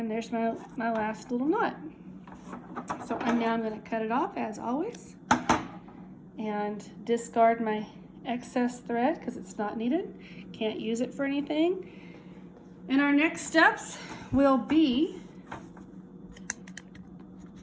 there's my last little knot. So now I'm gonna cut it off as always and discard my excess thread because it's not needed. Can't use it for anything. And our next steps will be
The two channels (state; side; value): identical; both; correlation 1.00